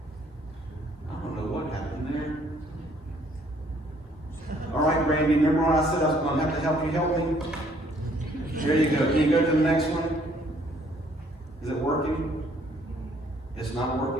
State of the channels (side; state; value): both; normal; correlation 0.63